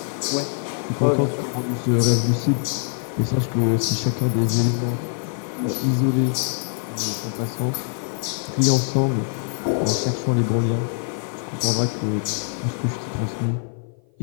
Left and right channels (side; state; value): right; silent; 55 dB below the other